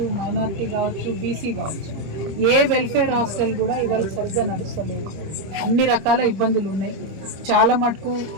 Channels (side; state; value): left; late; 25 ms